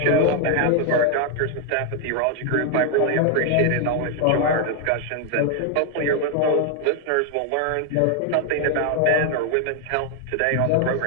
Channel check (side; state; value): both; different; correlation 0.01